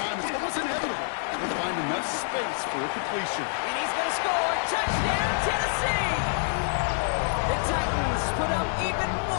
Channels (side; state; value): right; silent; 60 dB below the other